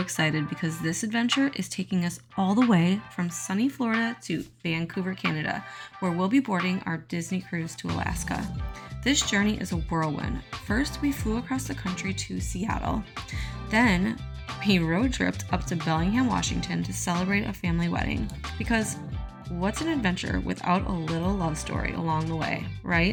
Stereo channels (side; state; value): both; identical; correlation 1.00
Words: because this adventure is taking us all the way from sunny Florida to Vancouver, Canada, where we'll be boarding our Disney cruise to Alaska. This journey is a whirlwind. First, we flew across the country to Seattle. Then, we road tripped up to Bellingham, Washington to celebrate a family wedding. Because what's an adventure without a little love story along the way,